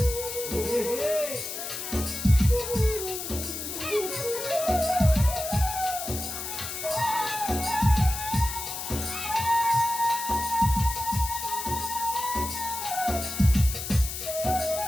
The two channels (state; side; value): noise; left; hiss, 6 dB below the sound